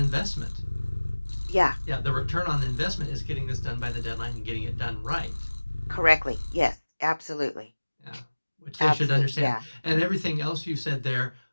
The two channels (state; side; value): inverted; both; correlation -1.00